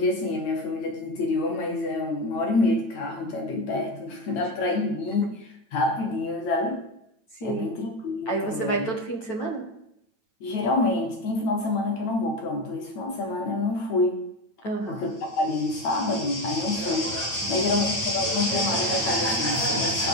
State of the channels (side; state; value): right; late; 9.0 ms